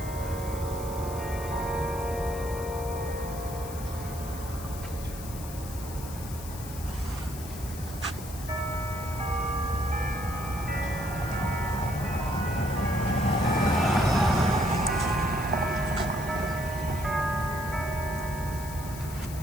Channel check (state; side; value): noise; left; hiss, 13 dB below the sound